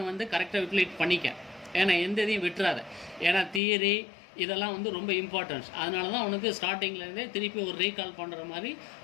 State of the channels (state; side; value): drops out; right; at 3.6 s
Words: வந்து கரெக்டாக யூட்டிலைட் பண்ணிக்க. ஏன்னா எந்த இதையும் விட்டுறாத. ஏன்னா தியரி இதெல்லாம் வந்து ரொம்ப இம்பார்ட்டன்ஸ். அதனால தான் உனக்கு ஸ்டார்டிங்லேருந்தே திருப்பி ஒரு ரீகால் பண்ணுற மாதிரி